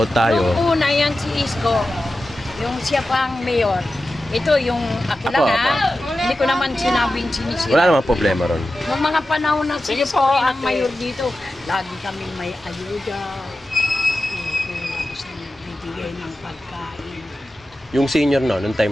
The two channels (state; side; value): normal; both; correlation 0.93